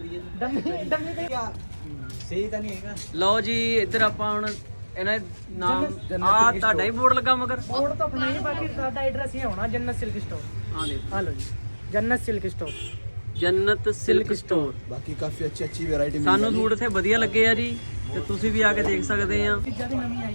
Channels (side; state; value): both; inverted; correlation -1.00